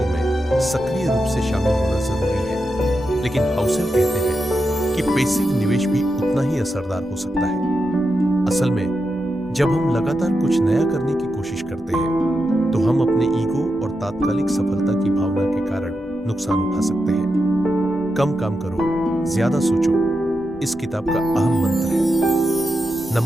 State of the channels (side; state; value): both; normal; correlation 0.87